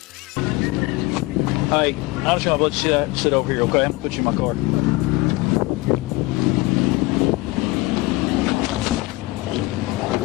Hey, I'm just gonna let you sit over here, okay? I'm gonna put you in my car.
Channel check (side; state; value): right; quieter; 21.3 dB